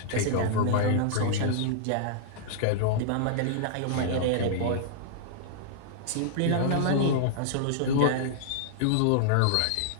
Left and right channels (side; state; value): both; different; correlation -0.01